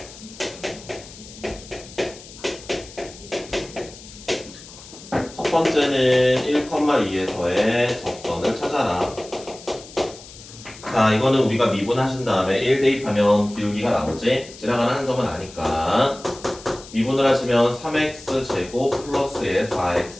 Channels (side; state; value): left; noise; hiss, 18 dB below the sound